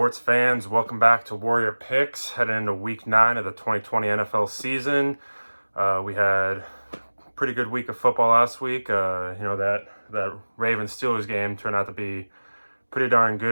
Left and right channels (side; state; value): both; inverted; correlation -1.00